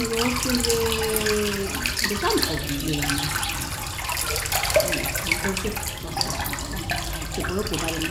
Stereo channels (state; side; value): identical; both; correlation 1.00